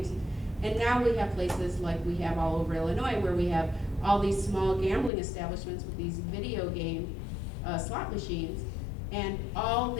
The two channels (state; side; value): drops out; right; at 5.1 s